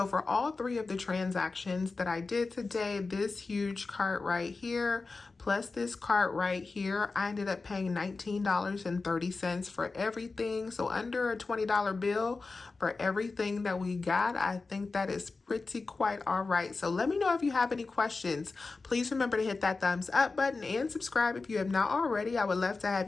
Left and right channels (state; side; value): quieter; right; 3.9 dB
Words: for all 3 of the transactions that I did today, this huge cart right here plus this cart right here, I ended up paying $19.30 for everything. So under a $20 bill for everything that we got. I think that is pretty quite all right. So let me know if you have any questions. Please remember to hit that thumbs up button and subscribe if you have not already. I would love to